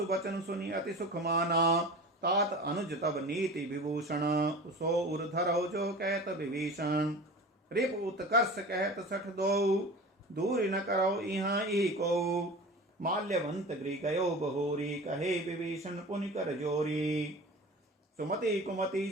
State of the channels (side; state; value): both; normal; correlation 0.35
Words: बचन सुनि अति सुख माना तात अनुज तब नीति विभूषण सो उर धरो जो कहत विभीषण रिप उत्कर्ष कहत सठ दो दूर न करो इहाँ ई को माल्यवंत गृह गयो बहोरी कहे विभीषण पुनि कर जोरी सुमति कुमति